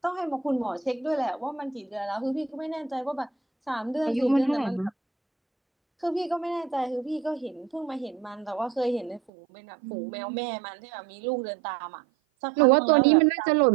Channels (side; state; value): left; drops out; at 9.3 s